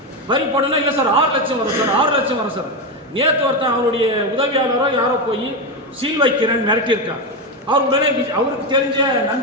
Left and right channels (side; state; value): both; normal; correlation 0.12